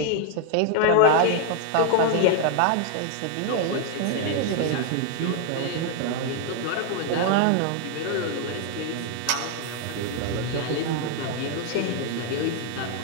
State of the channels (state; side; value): different; both; correlation 0.00